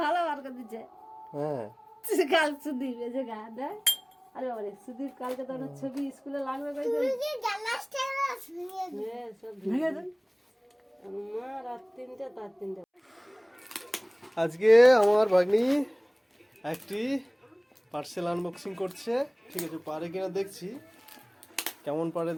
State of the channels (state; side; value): identical; both; correlation 1.00